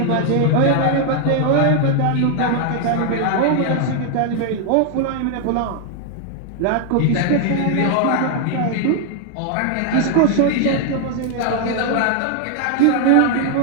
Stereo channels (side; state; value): both; different; correlation 0.00